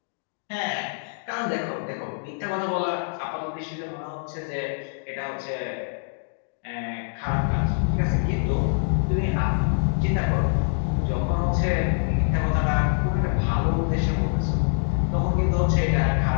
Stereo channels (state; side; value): silent; right; digital silence